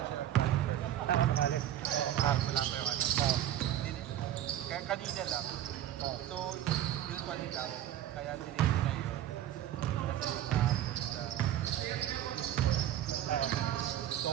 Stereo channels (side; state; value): left; quieter; 12.0 dB